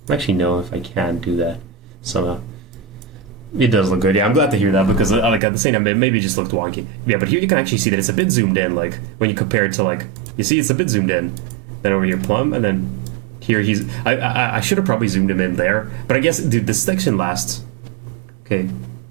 I actually know if I can do that somehow. It does look good. Yeah, I'm glad to hear that because like at the same time, it maybe just looked wonky. Yeah, but here you can actually see that it's a bit zoomed in. Like when you compare it to like, you see it's a bit zoomed in. Then over your plum, and then here he's. I should have probably zoomed him in there, but I guess, dude, this section lasts. Okay.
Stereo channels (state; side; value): drops out; left; at 5.4 s